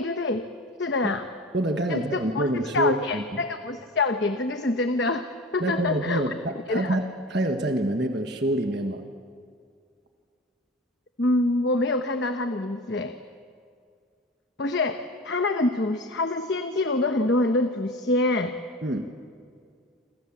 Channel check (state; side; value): normal; both; correlation 0.34